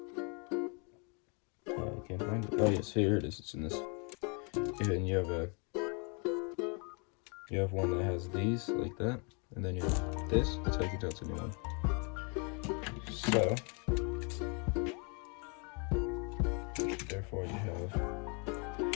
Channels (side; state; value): right; quieter; 34.9 dB